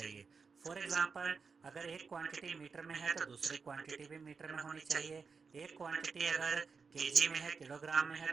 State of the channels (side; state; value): left; quieter; 5.2 dB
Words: फॉर एग्जांपल, अगर एक क्वांटिटी मीटर में है तो दूसरी क्वांटिटी भी मीटर में होनी चाहिए। एक क्वांटिटी अगर केजी में है, किलोग्राम में है,